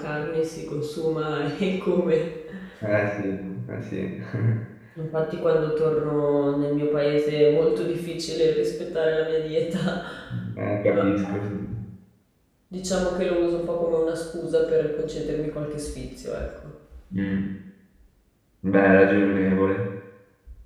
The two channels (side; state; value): both; identical; correlation 1.00